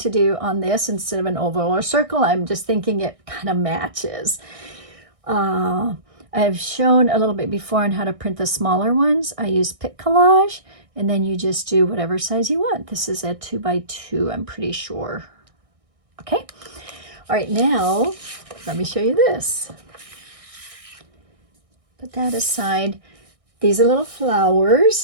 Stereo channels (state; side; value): late; left; 1.6 ms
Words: do on this instead of an oval or circle? I'm just thinking it kind of matches. I've shown a little bit before on how to print the smaller ones. I use Pick Collage, and then you just do whatever size you want. This is a 2x2, I'm pretty sure. Okay, all right, now let me show you this. Put that aside. These are little